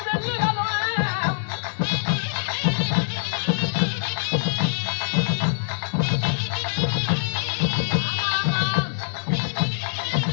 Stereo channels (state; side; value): silent; right; digital silence